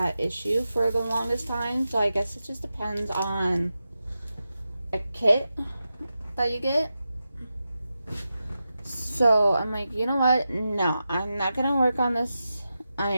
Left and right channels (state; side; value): inverted; both; correlation -0.90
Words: issue for the longest time, so I guess it just depends on a kit that you get. So I'm like, you know what? No, I'm not gonna work on this.